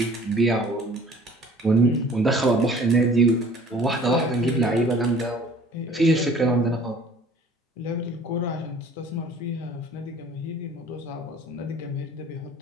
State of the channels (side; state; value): both; normal; correlation 0.50